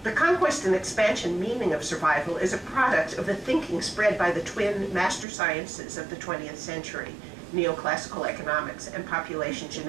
The conquest and expansion meaning of survival is a product of the thinking spread by the twin master sciences of the 20th century, neoclassical economics and population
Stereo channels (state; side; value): drops out; left; at 5.2 s